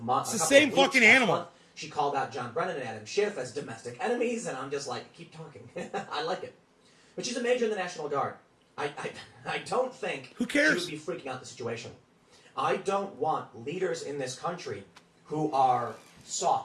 the same fucking animal. She called out John Brennan and Adam Schiff as domestic enemies, and I'm just like, keep talking. I like it. But she's a major in the National Guard. I don't think Who cares? she would be freaking out the situation. I don't want leaders in this country who are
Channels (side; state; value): both; identical; correlation 1.00